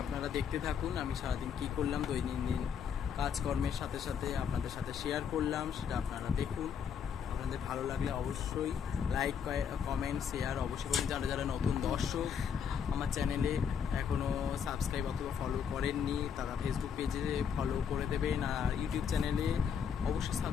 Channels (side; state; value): right; quieter; 7.4 dB